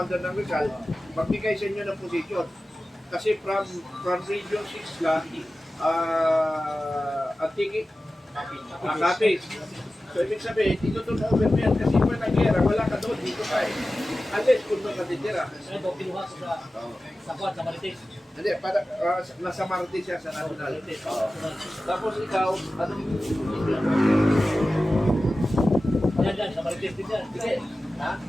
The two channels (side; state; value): both; normal; correlation 0.95